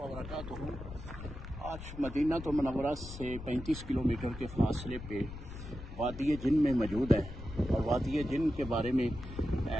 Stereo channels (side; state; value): left; noise; rumble, 11 dB below the sound